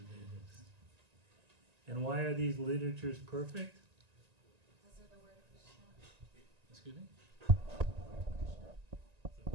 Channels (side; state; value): left; late; 1.9 ms